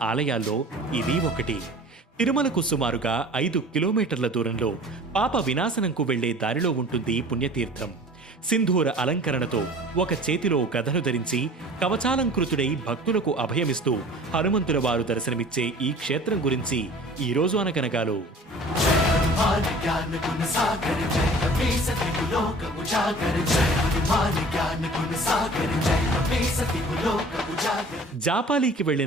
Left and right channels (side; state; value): both; normal; correlation 0.45